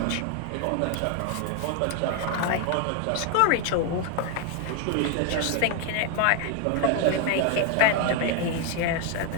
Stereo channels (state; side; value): different; both; correlation 0.01